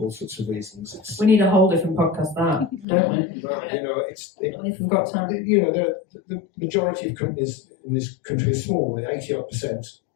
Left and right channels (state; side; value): drops out; right; at 2.9 s